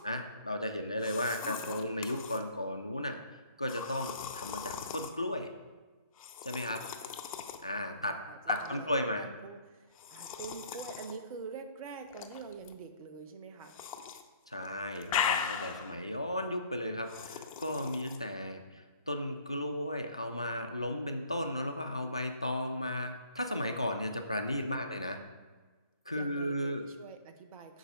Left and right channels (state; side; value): inverted; both; correlation -0.59